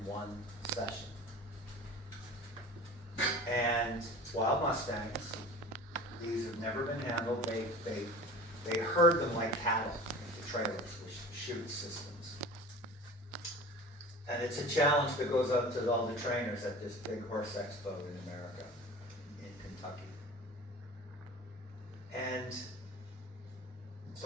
one session. And wild Mustangs, these have never been handled. They herd them like cattle into trailers with chute systems. And it's a challenge that goes up to all the trainers at this big horse expo in America, in Kentucky. And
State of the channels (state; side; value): normal; both; correlation 0.38